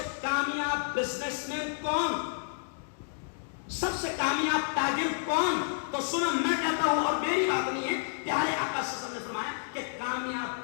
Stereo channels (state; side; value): silent; right; digital silence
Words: کامیاب بزنس مین کون، سب سے کامیاب تاجر کون؟ تو سنو میں کہتا ہوں، اور میری بات نہیں ہے، پیارے آقا صلی اللہ علیہ وسلم نے فرمایا کہ